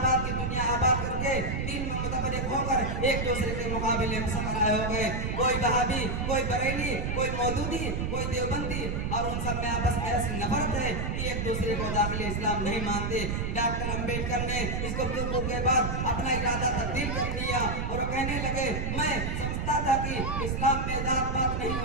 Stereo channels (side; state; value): right; noise; rumble, 1 dB below the sound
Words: کی دنیا آباد کر کے دین میں متفرق ہو کر ایک دوسرے کے مقابلے میں سفر ہو گئے. کوئی وہابی، کوئی بریلی، کوئی مودودی، کوئی دیوبندی، اور ان سب میں آپس میں ایسی نفرت ہے کہ ایک دوسرے کو داخل اسلام نہیں مانتے. ڈاکٹر امبیڈکر نے اس گفتگو کے بعد اپنا ارادہ تبدیل کر دیا اور کہنے لگے: میں سمجھتا تھا کہ اسلام میں ذات پات نہیں